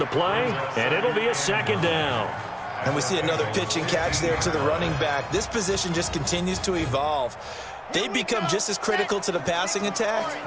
play, and it'll be a 2nd down. And we see another pitch and catch there to the running back. This position just continues to evolve. They become just as critical to the passing attack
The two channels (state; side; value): identical; both; correlation 1.00